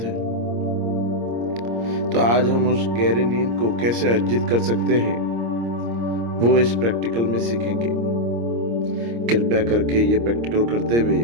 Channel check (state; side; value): late; left; 26 ms